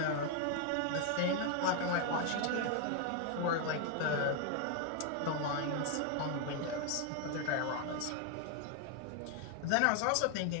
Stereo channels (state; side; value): different; both; correlation 0.00